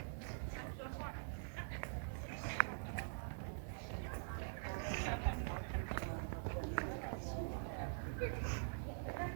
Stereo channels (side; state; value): left; silent; digital silence